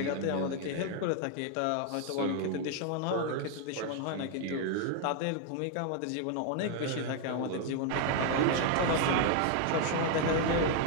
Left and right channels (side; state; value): both; different; correlation 0.00